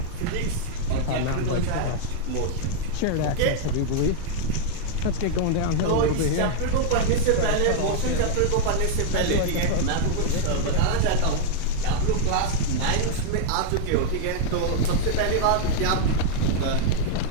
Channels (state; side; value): different; both; correlation -0.01